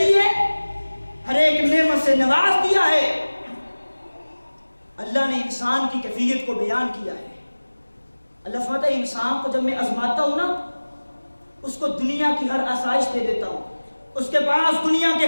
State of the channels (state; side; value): inverted; both; correlation -1.00